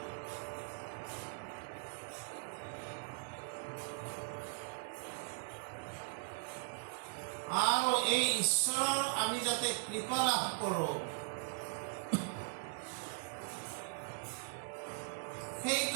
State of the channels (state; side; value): silent; left; digital silence